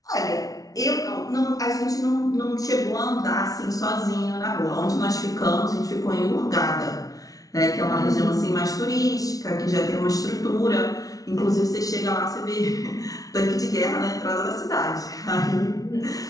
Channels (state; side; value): late; right; 0.18 ms